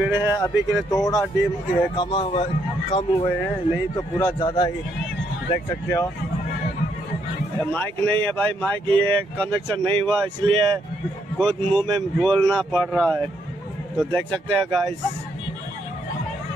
है। अभी के लिए थोड़ा कम हुए हैं, नहीं तो पूरा ज़्यादा ही। देख सकते हो, माइक नहीं है भाई, माइक ये कनेक्शन नहीं हुआ, इसलिए खुद मुंह में बोलना पड़ रहा है। तो देख सकते हैं गाइस,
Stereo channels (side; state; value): both; normal; correlation 0.74